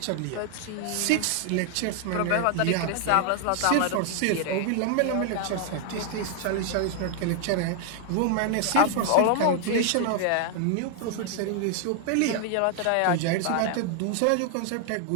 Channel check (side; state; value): both; different; correlation 0.00